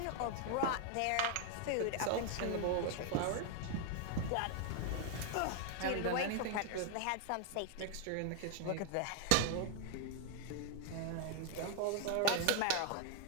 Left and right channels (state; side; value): different; both; correlation 0.01